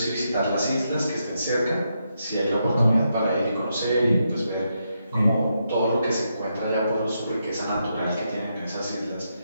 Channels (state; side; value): inverted; both; correlation -0.82